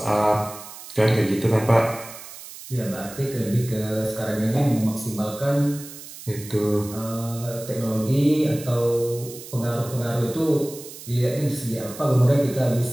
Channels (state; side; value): noise; right; hiss, 14 dB below the sound